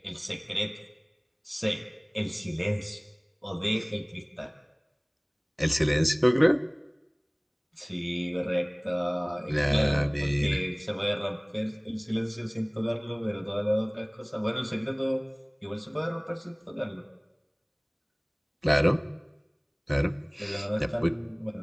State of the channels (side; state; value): both; identical; correlation 1.00